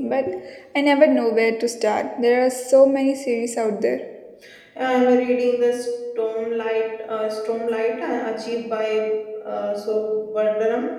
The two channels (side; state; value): both; identical; correlation 1.00